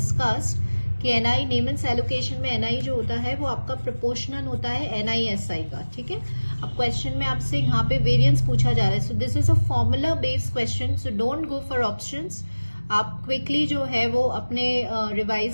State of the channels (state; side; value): inverted; both; correlation -1.00